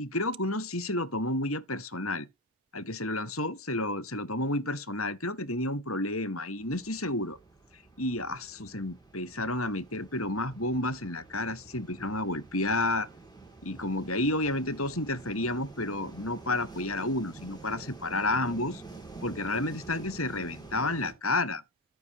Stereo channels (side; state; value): both; normal; correlation 0.17